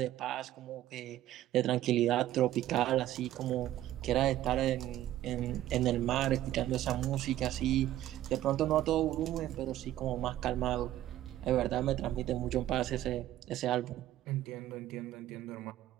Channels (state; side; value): quieter; left; 13.6 dB